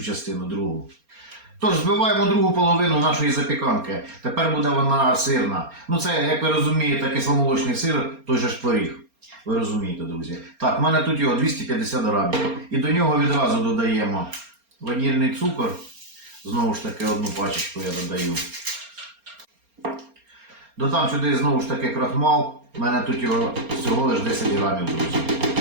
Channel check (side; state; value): left; late; 4.3 ms